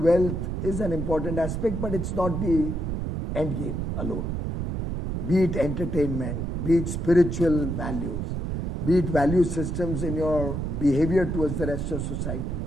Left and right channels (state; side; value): noise; right; rumble, 2 dB below the sound